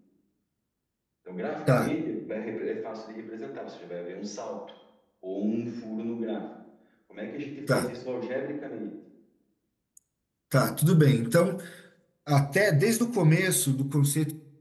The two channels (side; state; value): both; identical; correlation 1.00